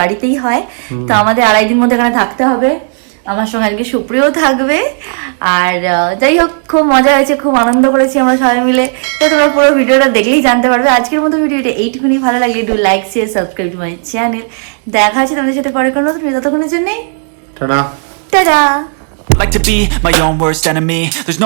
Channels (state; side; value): silent; left; 55 dB below the other